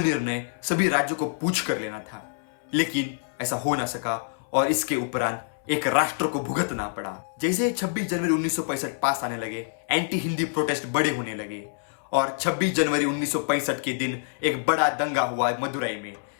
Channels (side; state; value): right; silent; 61 dB below the other